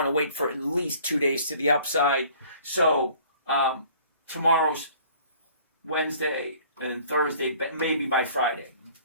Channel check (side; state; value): both; inverted; correlation -0.52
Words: to wait for at least 2 days to the upside. So tomorrow's Wednesday and Thursday, maybe by Friday.